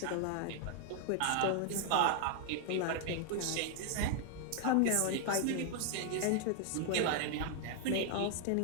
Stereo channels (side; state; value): both; different; correlation 0.00